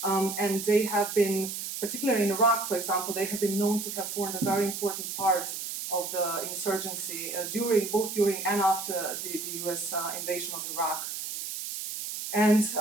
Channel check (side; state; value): right; noise; hiss, 6 dB below the sound